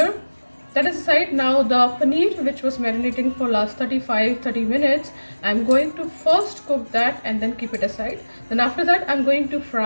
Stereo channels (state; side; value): inverted; both; correlation -1.00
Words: That is aside. Now the paneer, which was marinating for last 30 minutes, I'm going to first cook that and then keep it aside. Then after that I'm going to